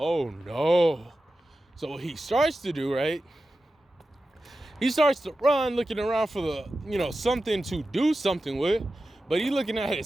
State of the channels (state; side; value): normal; both; correlation 0.93